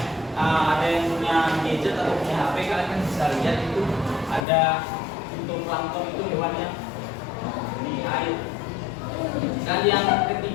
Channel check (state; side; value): drops out; right; at 4.5 s